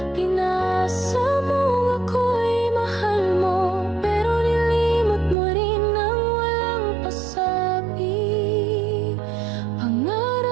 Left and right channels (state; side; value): drops out; left; at 5.4 s